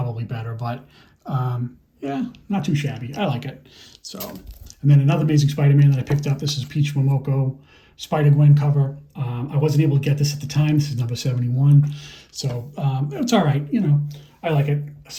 better, but yeah, not too shabby. I like it. So, and then another Amazing Spider-Man that I picked up. This is Peach Momoko Spider-Gwen cover. I wasn't able to get this at the time. This is number 71. So it's all right. You know, I like it.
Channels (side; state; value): both; identical; correlation 1.00